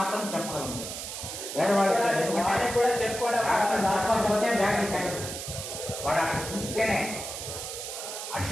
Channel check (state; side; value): noise; right; hiss, 7 dB below the sound